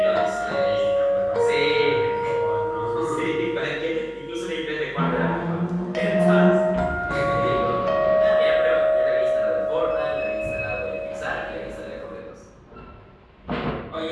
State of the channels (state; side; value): identical; both; correlation 1.00